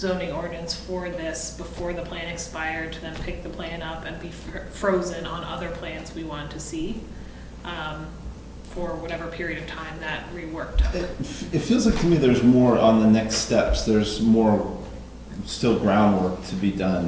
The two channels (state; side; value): identical; both; correlation 1.00